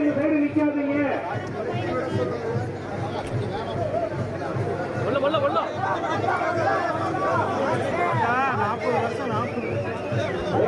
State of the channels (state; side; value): identical; both; correlation 1.00